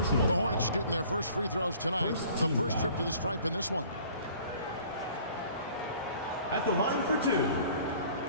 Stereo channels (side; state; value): both; inverted; correlation -0.51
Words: The Hornets shooting their first free throws tonight. The first trip to the stripe in this one. At the line for two,